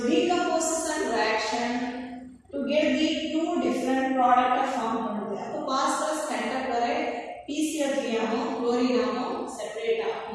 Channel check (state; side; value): identical; both; correlation 1.00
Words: decomposition reaction to get the two different product of form பண்ணுது அப்ப phosphorus pentachloride PCl3 ஆகும் chlorine ஆகும் separate